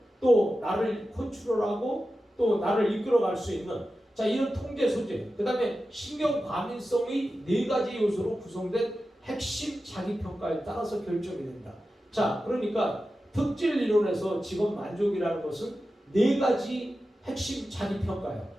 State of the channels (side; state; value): both; normal; correlation 0.93